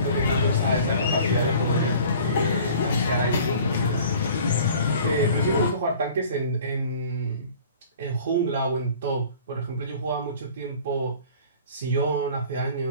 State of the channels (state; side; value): inverted; both; correlation -0.47